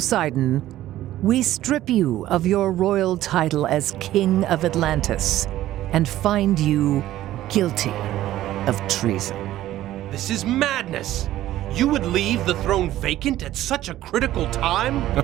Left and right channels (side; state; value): left; quieter; 14.1 dB